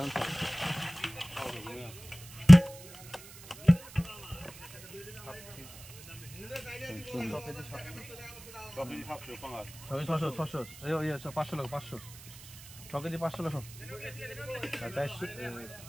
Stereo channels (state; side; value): noise; right; hiss, 18 dB below the sound